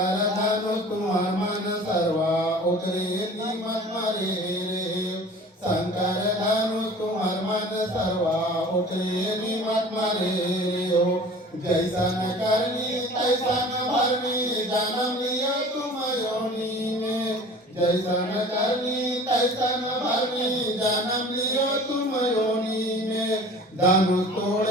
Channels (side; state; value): both; normal; correlation 0.43